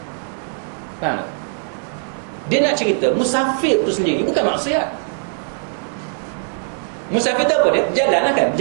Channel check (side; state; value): left; silent; digital silence